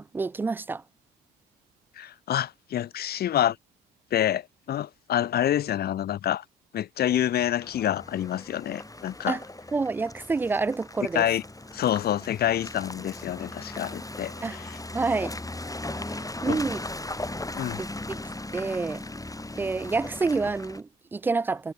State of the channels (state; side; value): quieter; right; 3.6 dB